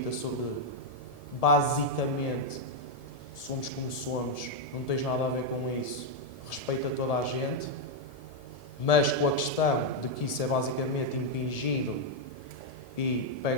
sobre, basicamente, somos como somos, não tens nada a ver com isso, respeita toda a gente, mas com a questão de que isso é basicamente impingido e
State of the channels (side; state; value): right; late; 1.7 ms